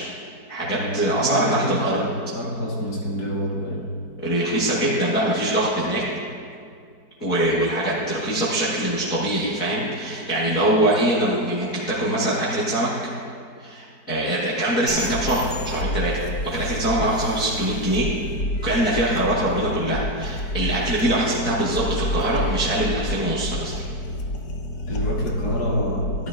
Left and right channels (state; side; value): late; right; 4.6 ms